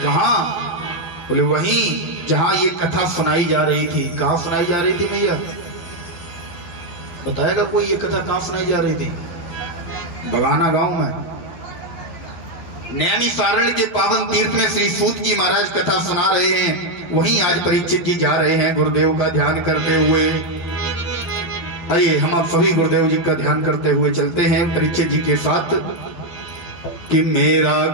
कहां? बोले वहीं जहां ये कथा सुनाई जा रही थी। कहां सुनाई जा रही थी भैया? बताएगा कोई ये कथा कहां सुनाई जा रही थी? बगाना गांव में नैमिषारण्य के पावन तीर्थ में श्री सूत जी महाराज कथा सुना रहे हैं। वहीं आज परीक्षित जी जा रहे हैं गुरुदेव का ध्यान करते हुए। आइए हम आप सभी गुरुदेव जी का ध्यान करते हुए चलते हैं परीक्षित जी के साथ। कि मेरा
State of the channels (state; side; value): late; right; 11 ms